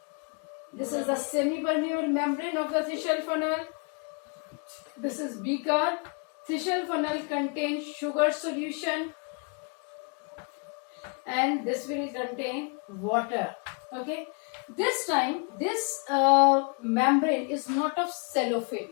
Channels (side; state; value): right; quieter; 35.8 dB